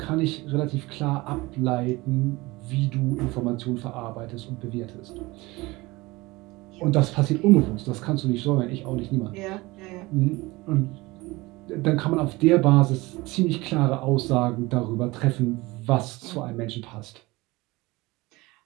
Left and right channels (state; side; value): quieter; left; 21.7 dB